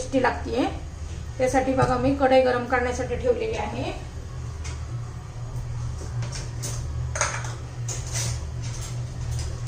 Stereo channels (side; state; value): both; identical; correlation 1.00